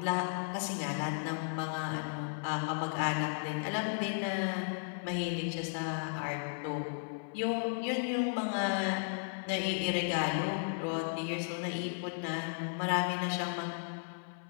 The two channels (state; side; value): silent; right; 54 dB below the other